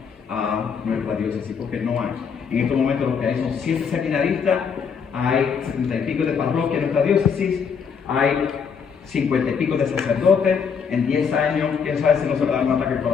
a nuestra diócesis, porque no hay. En este momento lo que hay son 7 seminaristas, hay 70 y pico de parroquias en nuestra diócesis, hay 50 y pico de sacerdotes. En 10 años, quién sabe si no se le da un ataque al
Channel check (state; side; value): quieter; right; 6.4 dB